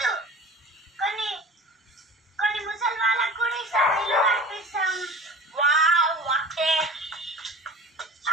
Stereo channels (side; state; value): both; normal; correlation 0.38